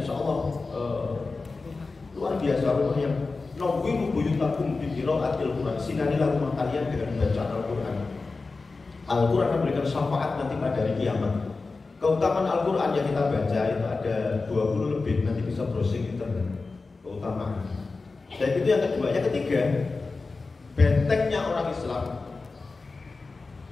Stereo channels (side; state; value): right; quieter; 3.9 dB